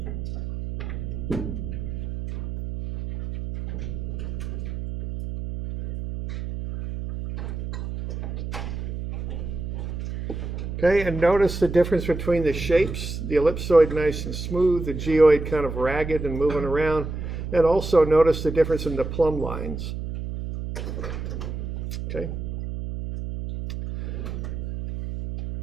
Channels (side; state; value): right; noise; hum, 6 dB below the sound